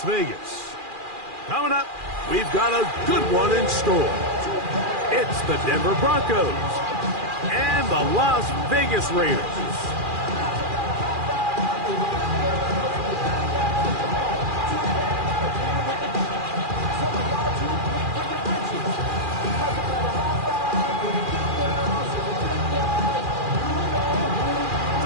Vegas. Coming up, we've got a good one in store. It's the Denver Broncos and the Las Vegas Raiders.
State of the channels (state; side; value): late; left; 2.4 ms